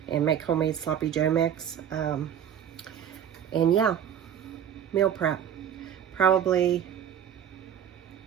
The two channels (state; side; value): quieter; left; 9.2 dB